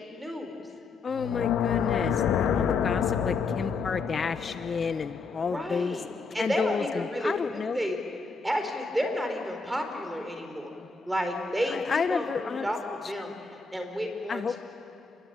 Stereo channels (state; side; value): quieter; right; 4.1 dB